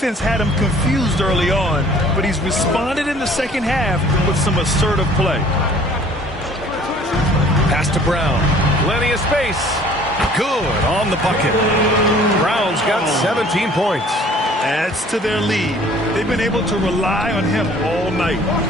had him confused early on, but he's responded in the second half with some assertive play. Pass to Brown. Plenty of space. Good on the bucket. Brown's got 17 points. Adds to their lead. They've been able to rely on him all night.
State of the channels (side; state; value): both; normal; correlation 0.53